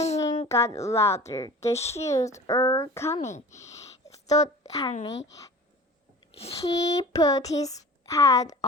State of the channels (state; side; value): normal; both; correlation 0.40